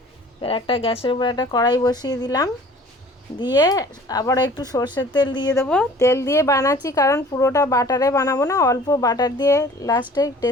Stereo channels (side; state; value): both; normal; correlation 0.49